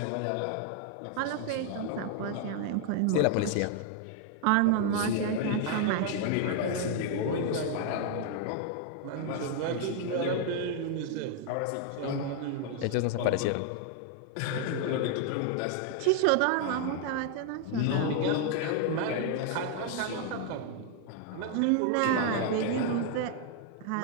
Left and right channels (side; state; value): both; different; correlation 0.00